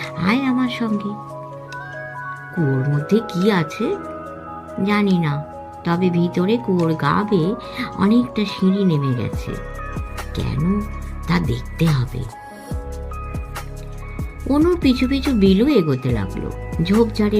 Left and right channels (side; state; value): both; identical; correlation 1.00